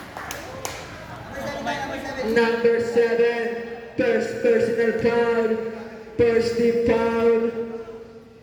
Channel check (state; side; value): identical; both; correlation 1.00